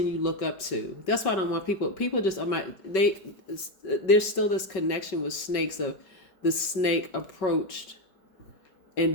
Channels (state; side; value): late; right; 5.3 ms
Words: you look up to. That's why I don't want people just, there's still this connection with snakes of the snake approached